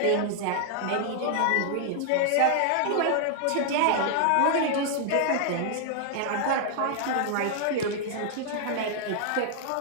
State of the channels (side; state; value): both; different; correlation 0.00